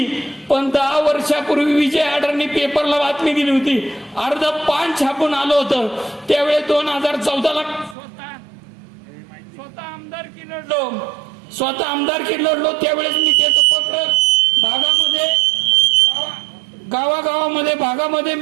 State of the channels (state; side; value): drops out; left; at 8.0 s